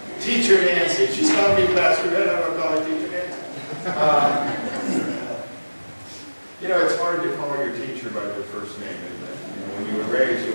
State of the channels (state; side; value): inverted; both; correlation -1.00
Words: Teacher Nancy. She's calling me Pastor Ed, I'm going to call her Teacher Nancy. You know, it's hard to call your teacher by their first name, isn't it? You know, when you were raised, you